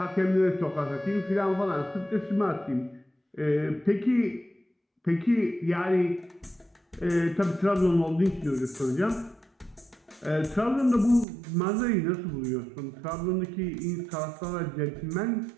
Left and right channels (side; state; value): left; drops out; at 11.2 s